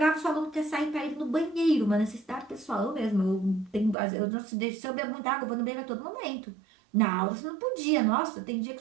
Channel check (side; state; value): left; drops out; at 4.0 s